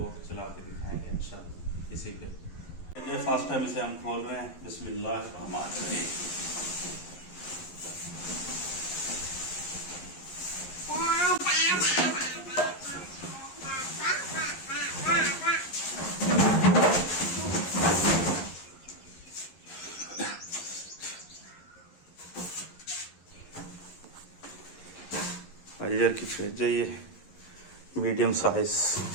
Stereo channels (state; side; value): late; right; 11 ms